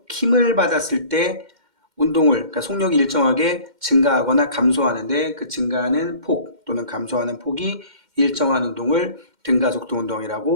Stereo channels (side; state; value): left; late; 2.1 ms